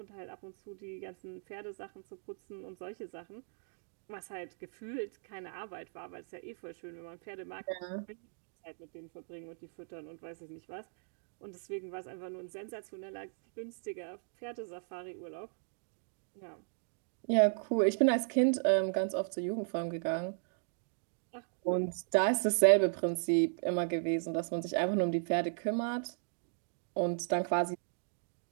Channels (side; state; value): left; silent; digital silence